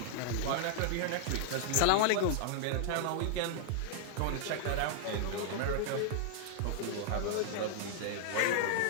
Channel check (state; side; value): different; both; correlation 0.00